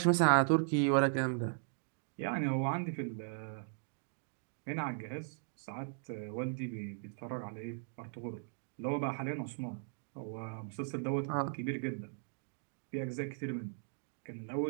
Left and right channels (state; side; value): silent; left; digital silence